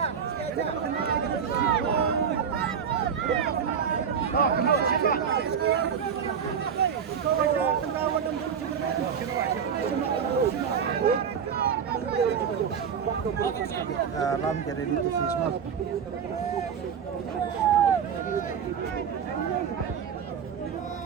Lam jadi di Fisma.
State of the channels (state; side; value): quieter; left; 7.2 dB